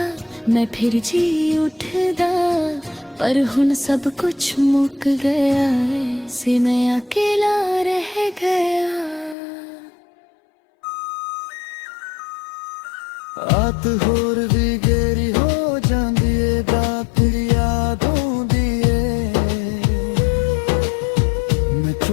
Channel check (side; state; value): right; drops out; at 9.3 s